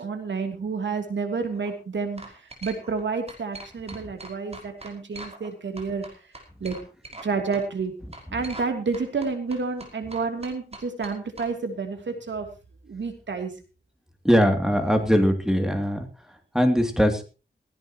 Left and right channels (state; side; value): normal; both; correlation 0.70